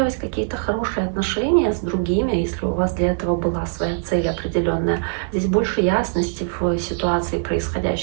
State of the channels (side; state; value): left; silent; 65 dB below the other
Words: какие-то хорошие отношения с другими, если у вас для этого была своя цель определенная. Здесь больше ясности в ситуации